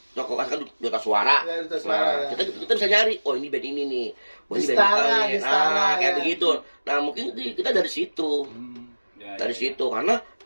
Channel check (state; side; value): inverted; both; correlation -1.00